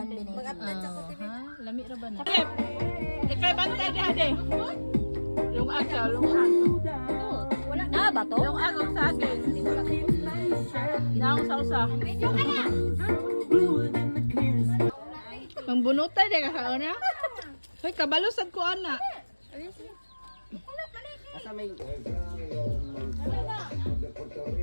din. Lami ra ba na? Ikay bantay di ade. Yung agaw, yung agaw. Wala na ba to? Yung agaw sa akin. Naong sa usa. Mangbunutay di ka kauna? Hoy, kabalusad ko ana. Asa may...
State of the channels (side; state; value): both; inverted; correlation -1.00